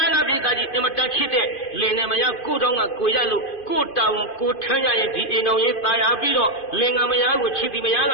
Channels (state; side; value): late; right; 2.5 ms